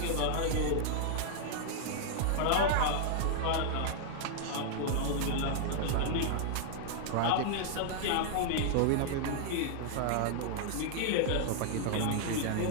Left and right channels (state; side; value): different; both; correlation -0.01